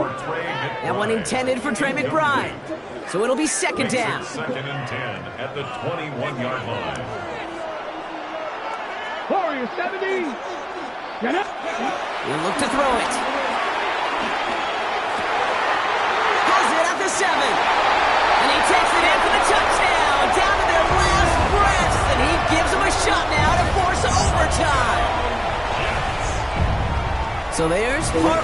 That one intended for Trey McBride. So it'll be 2nd down. 2nd and 10 at the 21-yard line. Warriors 70. Get up. He'll look to throw it. Has it at the 7. And he takes it in for the touchdown. Down to their last breaths. And he gives them a shot now to force overtime. So there's part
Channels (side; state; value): both; identical; correlation 1.00